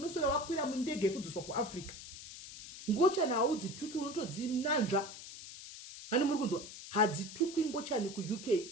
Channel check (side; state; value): left; noise; hiss, 13 dB below the sound